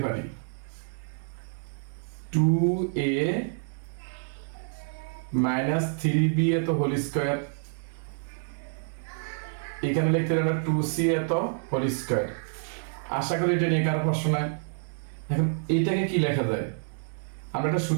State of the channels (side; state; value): left; silent; digital silence